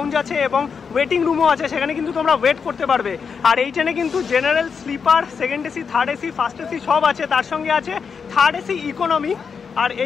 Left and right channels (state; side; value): quieter; right; 6.0 dB